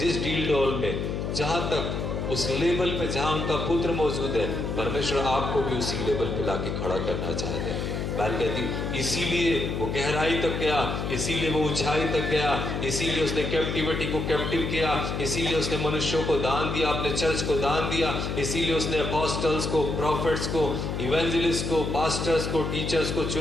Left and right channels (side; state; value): left; noise; hum, 3 dB below the sound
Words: डील डोल में, जहां तक, उस लेवल पे जहां उनका पुत्र मौजूद है, परमेश्वर आपको भी उसी लेवल पे लाके खड़ा करना चाहते हैं। बाइबल कहती इसीलिए वो गहराई तक गया, इसीलिए वो ऊंचाई तक गया, इसीलिए उसने कैप्टिविटी को कैप्टिव किया, इसीलिए उसने मनुष्यों को दान दिया, अपने चर्च को दान दिया, इसीलिए उसने अपोस्टल्स को, प्रॉफिट्स को, इवेंजलिस्ट को, पास्टर्स को, टीचर्स को